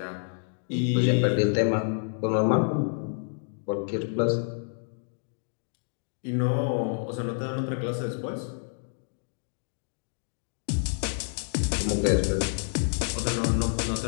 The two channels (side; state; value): right; silent; digital silence